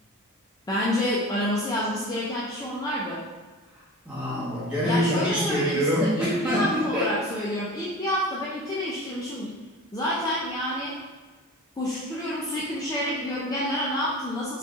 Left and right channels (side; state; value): both; normal; correlation 0.36